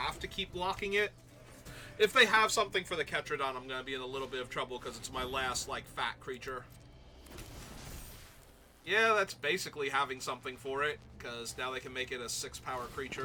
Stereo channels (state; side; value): identical; both; correlation 1.00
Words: to keep blocking it. If they have something for the Ketradon, I'm going to be in a little bit of trouble because it's my last, like, fat creature. Yeah, that's basically having something for it, because now they can make it a 6-power